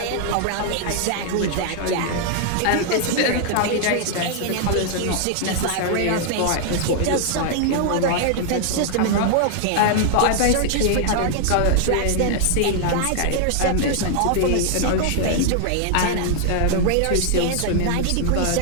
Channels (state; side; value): different; both; correlation 0.00